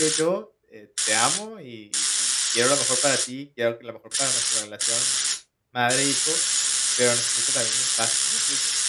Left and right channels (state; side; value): identical; both; correlation 1.00